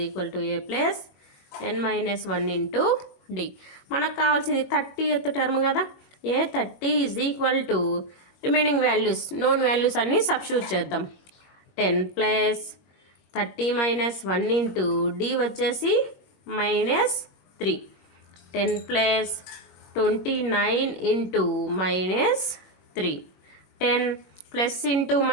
equal to a + n-1 into D. మనకు కావాల్సింది 30th టర్మ్ కదా. A 30 is equal to remaining values, known values అన్నీ సబ్స్టిట్యూట్ చేద్దాం. 10 + 30 - 1 ఇంటూ డి వచ్చేసి -3. 10 + 29 into -3. 10 plus into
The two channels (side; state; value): right; late; 21 ms